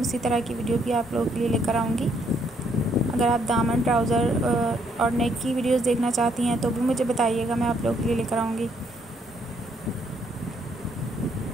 उसी तरह की वीडियो भी आप लोगों के लिए लेकर आऊँगी। अगर आप दामन, ट्राउज़र और नेक की वीडियोस देखना चाहती हैं तो भी मुझे बताइएगा, मैं आप लोगों के लिए लेकर आऊँगी।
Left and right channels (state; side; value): normal; both; correlation 0.71